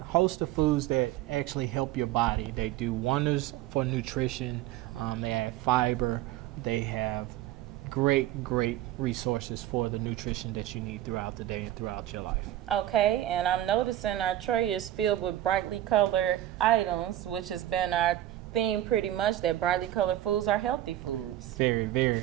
host of foods that actually help your body. They do wonders for nutrition. They add fiber. They have great resources for the nutrition that you need throughout the day and throughout your life. Okay, and I'm noticing our tray is filled with brightly colored items, which has been our theme pretty much, that brightly colored foods are healthy foods. Very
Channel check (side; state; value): left; quieter; 13.5 dB